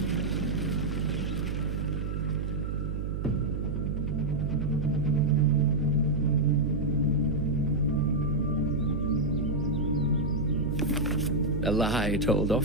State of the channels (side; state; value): right; noise; hum, 3 dB below the sound